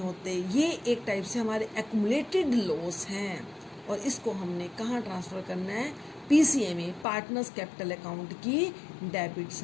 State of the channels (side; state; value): right; drops out; at 7.1 s